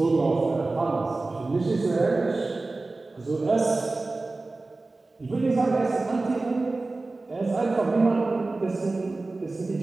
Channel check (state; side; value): quieter; left; 3.3 dB